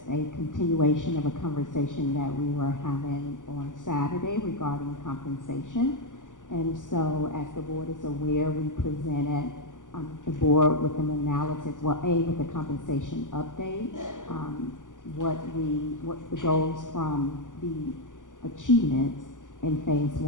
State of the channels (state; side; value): late; right; 0.87 ms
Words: a continuation of a conversation that we were having on Saturday regarding compensation. And so, as the board is aware, we presented the board with an analysis, with the compensation update, what the goals from the achievements in phase